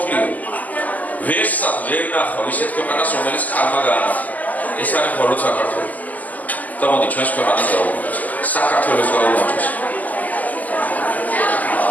ვერსად ვერ ნახავ ისეთ ქვეყანას, რომელიც ქალმა გაანახა. ეს არის მხოლოდ საქართველო. და მოდი ჩვენს ქვეყანას გაუმარჯოს. საქართველოს გაუმარჯოს.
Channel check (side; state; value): right; late; 0.080 ms